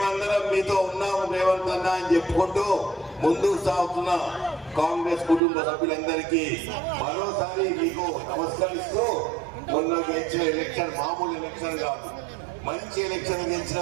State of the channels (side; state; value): left; drops out; at 5.4 s